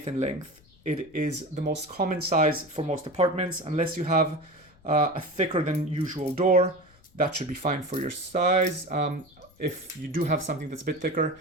in length. It is the most common size for most apartments, unless you have a thicker than usual door. That should be fine for your size. If you do have something that's a bit thicker,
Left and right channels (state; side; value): noise; left; rumble, 29 dB below the sound